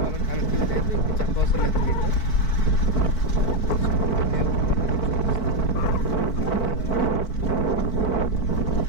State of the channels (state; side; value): late; right; 4.5 ms